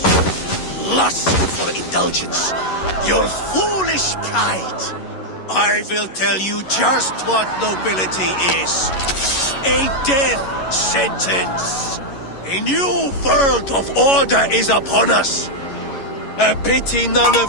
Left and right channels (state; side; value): late; right; 11 ms